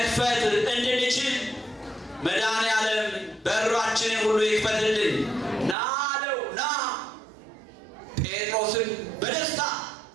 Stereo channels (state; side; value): drops out; left; at 5.8 s